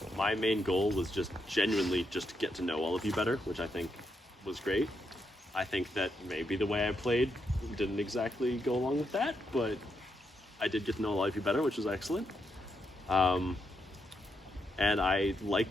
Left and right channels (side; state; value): both; normal; correlation 0.81